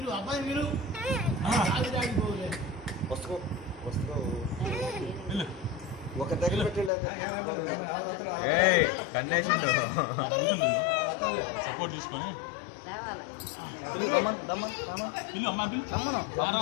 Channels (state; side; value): drops out; right; at 6.9 s